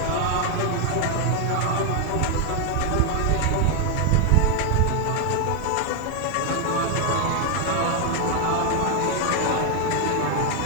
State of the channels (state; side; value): different; both; correlation 0.01